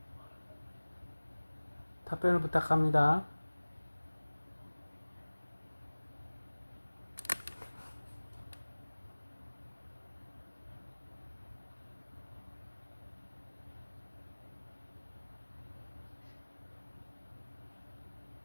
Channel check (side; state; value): both; inverted; correlation -1.00